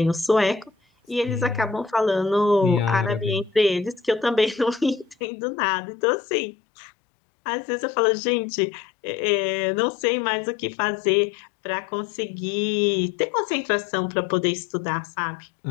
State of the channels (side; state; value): right; drops out; at 5.2 s